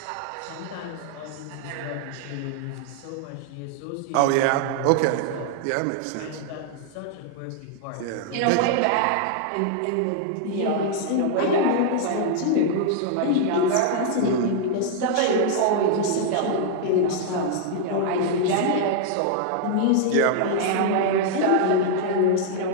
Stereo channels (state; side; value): different; both; correlation 0.00